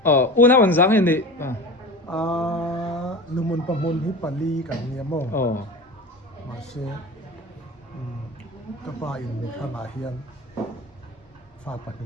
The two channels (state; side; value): normal; both; correlation 0.32